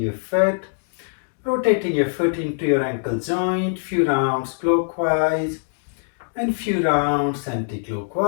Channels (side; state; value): right; silent; digital silence